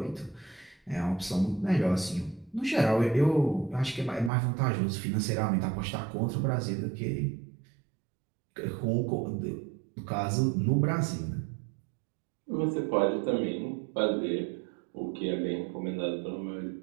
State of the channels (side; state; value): left; drops out; at 4.3 s